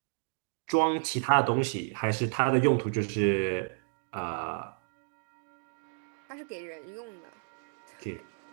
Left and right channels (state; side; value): silent; left; 57 dB below the other